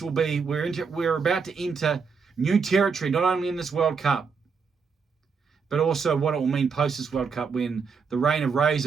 we're about to enter new territory, not only in this World Cup, but also what it will mean post this World Cup, when the reign of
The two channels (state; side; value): quieter; left; 5.5 dB